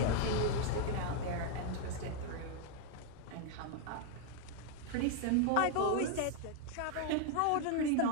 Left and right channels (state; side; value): different; both; correlation 0.00